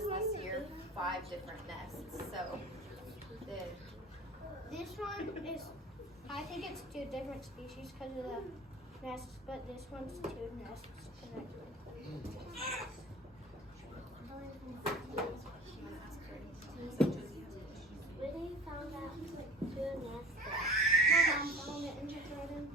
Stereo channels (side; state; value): both; normal; correlation 0.42